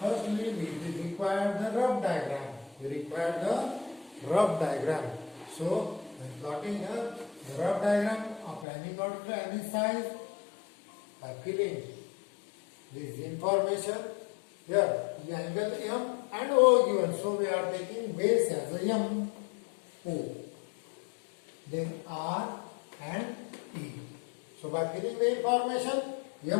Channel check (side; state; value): right; drops out; at 8.7 s